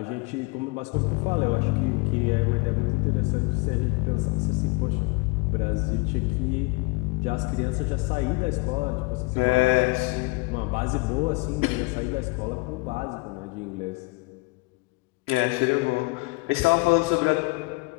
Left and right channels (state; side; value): quieter; right; 26.5 dB